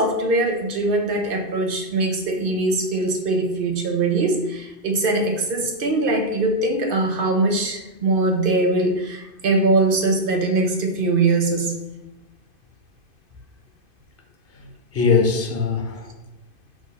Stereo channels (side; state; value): left; late; 2.5 ms